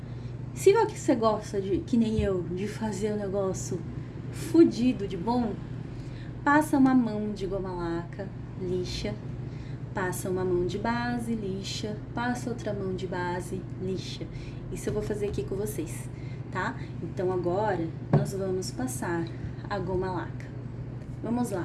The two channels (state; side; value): identical; both; correlation 1.00